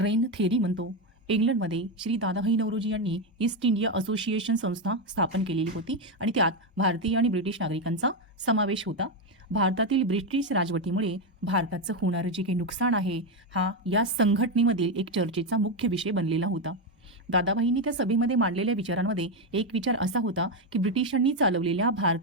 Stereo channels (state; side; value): normal; both; correlation 0.08